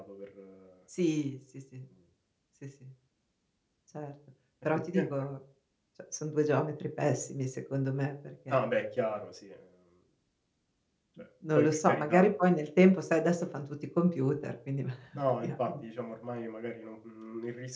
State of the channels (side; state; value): both; identical; correlation 1.00